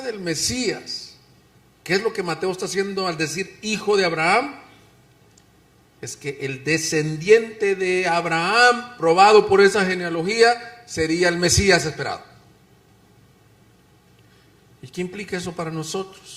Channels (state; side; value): identical; both; correlation 1.00